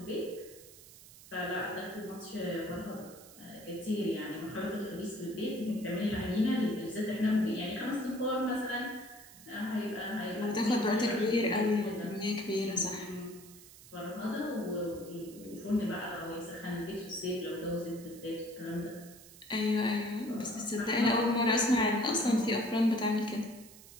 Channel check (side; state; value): right; noise; hiss, 19 dB below the sound